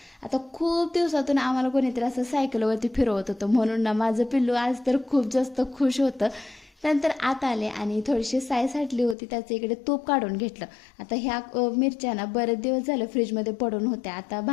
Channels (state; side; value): drops out; right; at 9.2 s